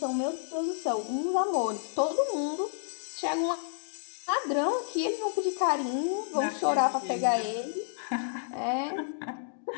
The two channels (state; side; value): silent; right; digital silence